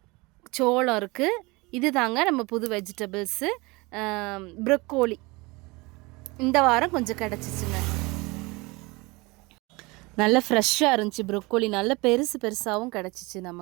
சோளம் இருக்குது. இது தாங்க நம்ம புது வெஜிடபிள்ஸு. ப்ரொக்கோலி இந்த வாரம் கொஞ்சம் கிடச்சிச்சுங்க. நல்லா ஃப்ரெஷ்ஷாக இருந்துச்சு. ப்ரொக்கோலி நல்ல பெருசாகவும் கிடச்சிச்சு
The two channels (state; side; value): quieter; left; 24.5 dB